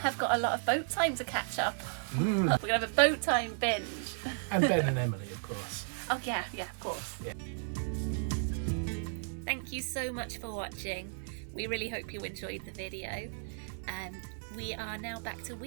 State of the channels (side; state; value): left; silent; 55 dB below the other